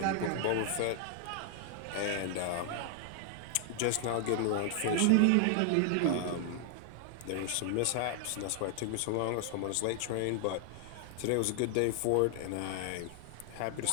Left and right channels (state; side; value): different; both; correlation 0.00